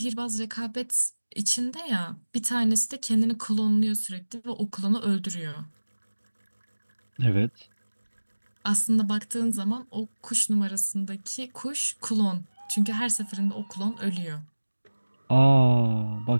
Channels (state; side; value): inverted; both; correlation -1.00